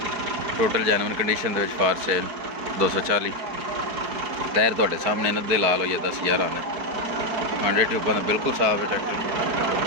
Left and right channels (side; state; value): left; late; 4.6 ms